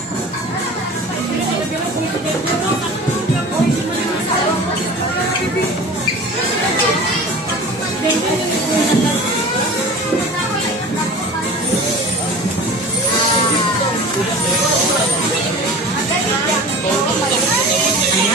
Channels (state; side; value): normal; both; correlation 0.38